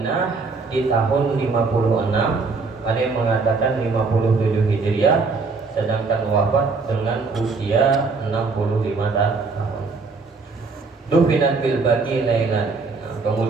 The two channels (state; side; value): quieter; left; 4.2 dB